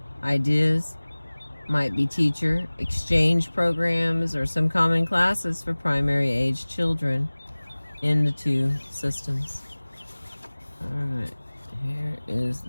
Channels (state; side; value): inverted; both; correlation -1.00